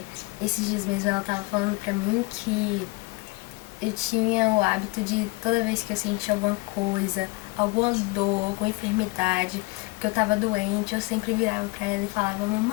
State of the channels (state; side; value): quieter; right; 25.6 dB